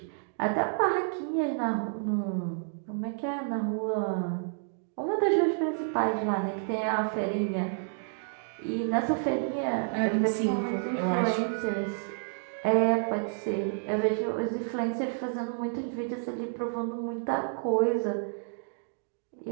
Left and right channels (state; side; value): silent; left; digital silence